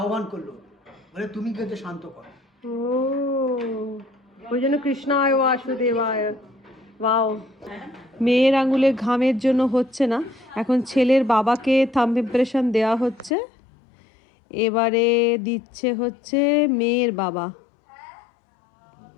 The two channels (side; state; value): right; drops out; at 13.3 s